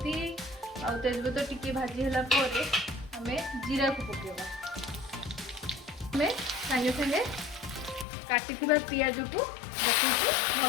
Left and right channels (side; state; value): right; drops out; at 8.1 s